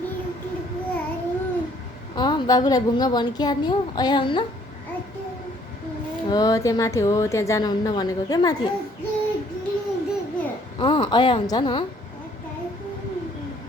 बाबुलाई भुङ्गा भने के हार्ने हो अया हुन्न हो त्यहाँ माथि हो त्यहाँ जानुहुन्न भनेको क्या माथि अया हुन्छ न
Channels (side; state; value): both; normal; correlation 0.62